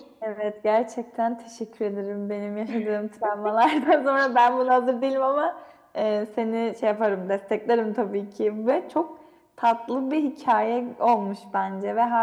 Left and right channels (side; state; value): both; identical; correlation 1.00